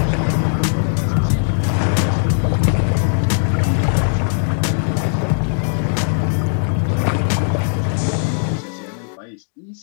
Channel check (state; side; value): silent; right; 62 dB below the other